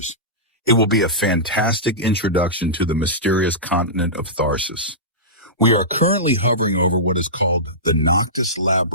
It will be a fantastic introduction to the mysterious continent of Tharsis. We are currently hovering over what is called the Noctis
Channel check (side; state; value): both; normal; correlation -0.18